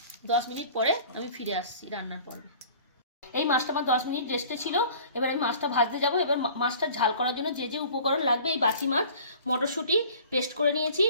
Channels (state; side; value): inverted; both; correlation -0.47